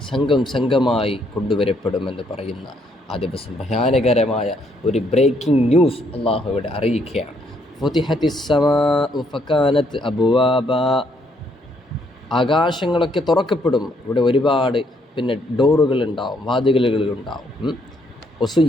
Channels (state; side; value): normal; both; correlation 0.71